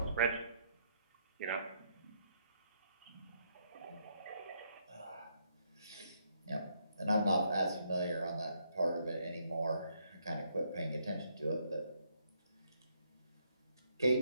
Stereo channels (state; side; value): inverted; both; correlation -0.73